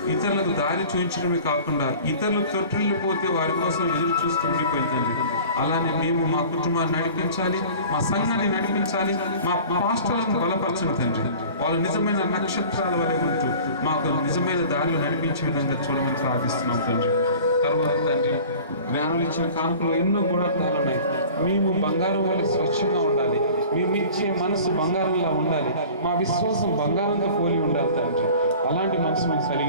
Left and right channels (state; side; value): inverted; both; correlation -0.43